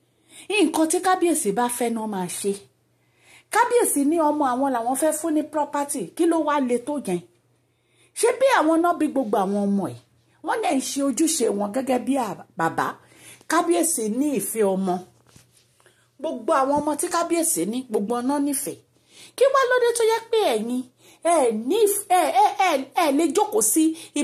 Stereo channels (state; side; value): identical; both; correlation 1.00